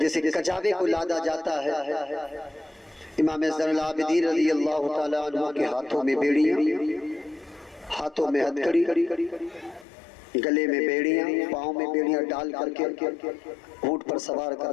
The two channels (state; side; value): drops out; right; at 9.9 s